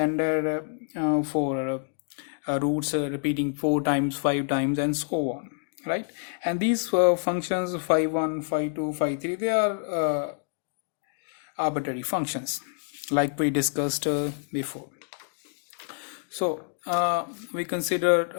for roots repeating 4 times, 5 times, and so on, right? And these functions phi 1, phi 2, phi 3, they are arbitrary functions like we discussed before. So we consider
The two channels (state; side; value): silent; right; digital silence